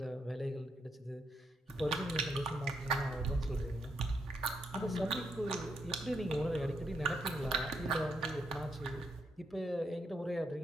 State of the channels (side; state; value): both; normal; correlation 0.79